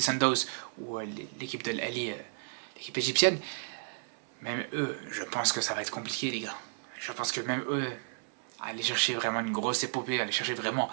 Sundowns ou l'équipe de l'Ali, l'équipe égyptienne, même eux, je pense que ça va être compliqué, les gars. Je pense que même eux, aller chercher vraiment une grosse épopée, aller chercher vraiment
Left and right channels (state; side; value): silent; left; 56 dB below the other